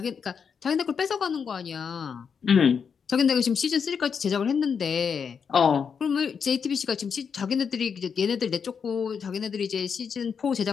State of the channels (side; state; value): right; quieter; 6.5 dB